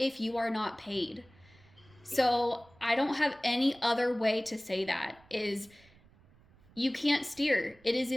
you are not paid. So I don't have any other way to say that, is you can't steer. It is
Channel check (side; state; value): right; noise; rumble, 28 dB below the sound